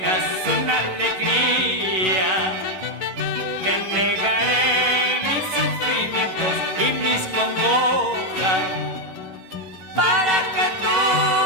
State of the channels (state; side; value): late; left; 11 ms